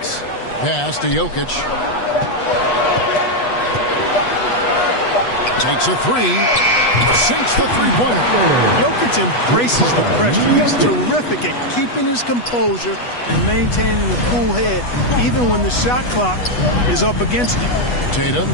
Pass to Jokic. Takes a 3. Sinks the three-pointer. Jokic embraces the pressure. He's terrific at keeping his composure and maintaining a cool head even when the shot clock is up against him. Tatum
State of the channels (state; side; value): late; right; 8.2 ms